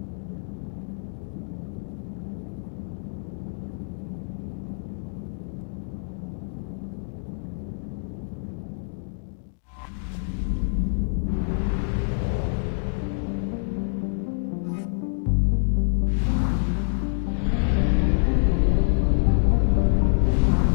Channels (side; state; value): right; silent; digital silence